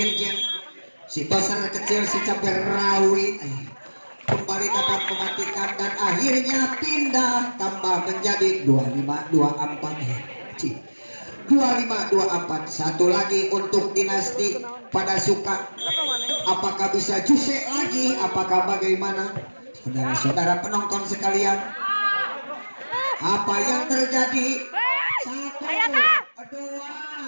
si toser kecil si cabai rawit kembali dapat mematikan dan akhirnya pindah tambah menjadi 25-24. 25-24. Satu lagi untuk dinasti pada suka. Apakah bisa jusek lagi? Apakah bagaimana? Saudara-saudara penonton sekalian, apa yang terjadi? 1, 2,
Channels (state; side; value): inverted; both; correlation -1.00